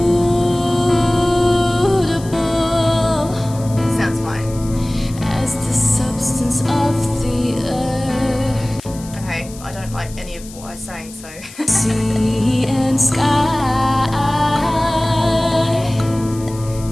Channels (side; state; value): left; noise; hiss, 18 dB below the sound